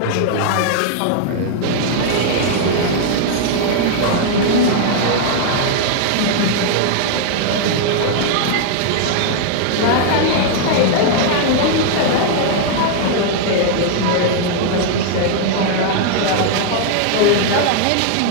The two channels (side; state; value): both; different; correlation 0.00